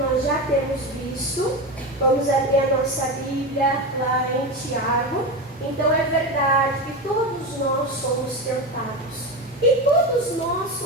já temos visto, vamos abrir a nossa Bíblia lá em Tiago. Então é verdade que todos nós somos tentados. E todos nós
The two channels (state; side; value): normal; both; correlation 0.20